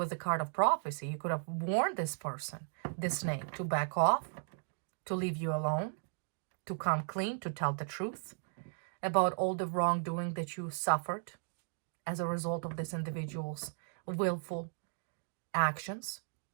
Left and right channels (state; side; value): silent; left; digital silence